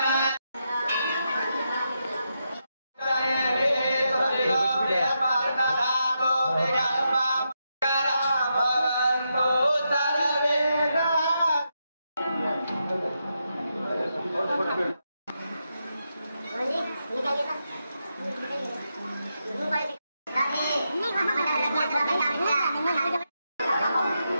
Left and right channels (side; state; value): both; inverted; correlation -0.84